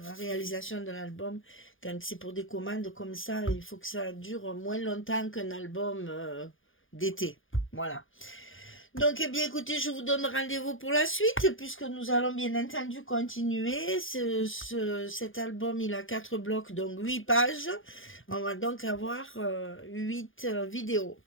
réalisation de l'album. Quand c'est pour des commandes comme ça, il faut que ça dure moins longtemps qu'un album d'été. Voilà. Donc, eh bien, écoutez, je vous donne rendez-vous pour la suite, puisque nous allons bien entendu continuer. Cet album, il a 4 blocs, donc 8 pages. On va donc avoir 8 vidéos.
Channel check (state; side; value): late; right; 0.58 ms